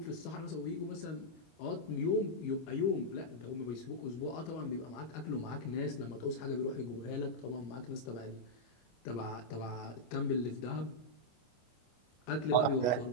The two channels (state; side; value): late; right; 25 ms